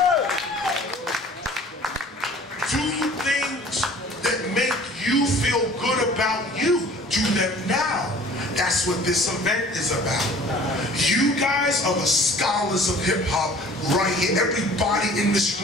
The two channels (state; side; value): normal; both; correlation 0.49